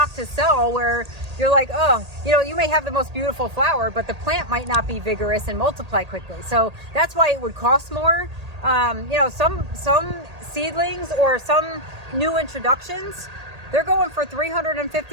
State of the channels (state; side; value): late; left; 1.8 ms